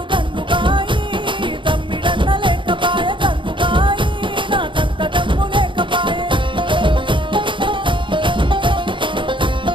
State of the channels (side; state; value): left; late; 0.24 ms